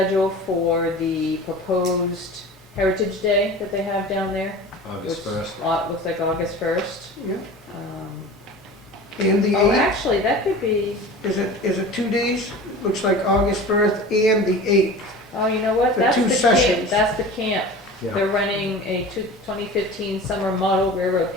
for the proposed Heritage Day that they have down there. August which 1st. Looks like August 1st. Yeah. And the Oh, 8th, actually, that could be, is it 2 days? Looks like August 1st and the 8th. oh, you know what? For That's two the camp. sessions. That's the camp. Yeah. They're running a 2015 summer model railroad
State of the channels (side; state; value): both; normal; correlation 0.37